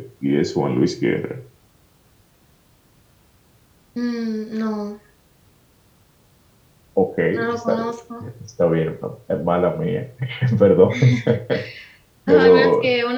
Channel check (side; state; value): both; identical; correlation 1.00